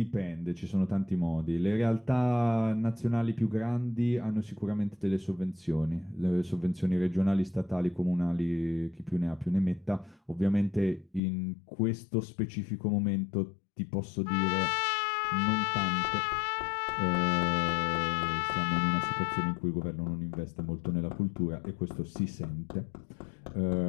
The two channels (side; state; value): right; drops out; at 11.2 s